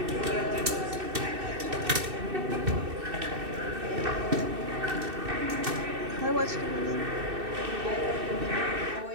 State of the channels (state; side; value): late; left; 2.6 ms